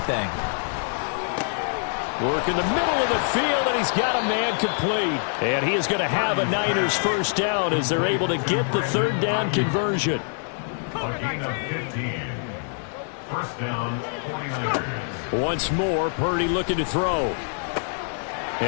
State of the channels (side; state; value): right; silent; 59 dB below the other